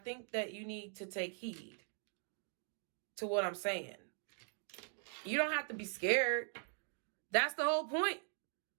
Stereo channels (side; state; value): left; silent; 50 dB below the other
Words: that you need to take heed to what I'm saying. You don't have to be scared. That's the whole point.